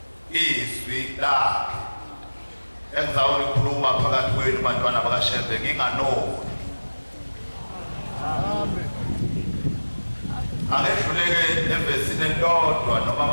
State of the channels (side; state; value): both; inverted; correlation -1.00